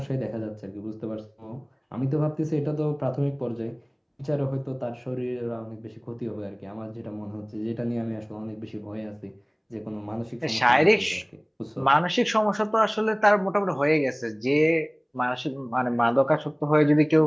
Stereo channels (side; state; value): both; identical; correlation 1.00